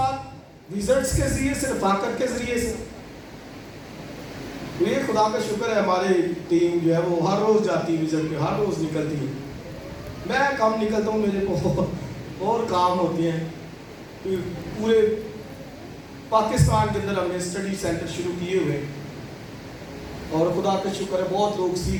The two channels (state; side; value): identical; both; correlation 1.00